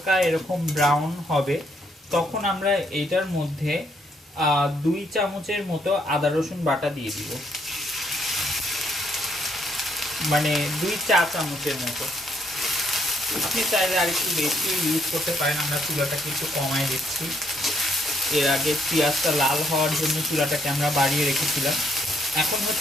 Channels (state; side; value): normal; both; correlation 0.71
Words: এরকম ব্রাউন হবে, তখন আমরা এটার মধ্যে 2 চামচের মতো আদা রসুন বাটা দিয়ে দিব, মানে 2 চা চামচের মতো। আপনি চাইলে আর একটু বেশি ইউজ করতে পারেন, আমরা চুলাটাকে একটু কমায় দিচ্ছি। এর আগে পেঁয়াজটা লাল হওয়ার জন্য চুলাটাকে আমরা বাড়িয়ে রেখেছিলাম। এখন